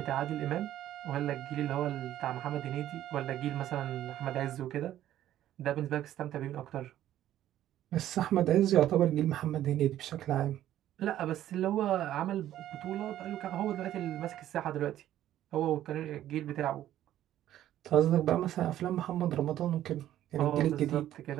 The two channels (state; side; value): quieter; left; 12.5 dB